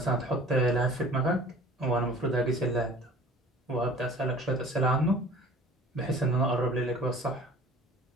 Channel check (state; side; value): normal; both; correlation 0.46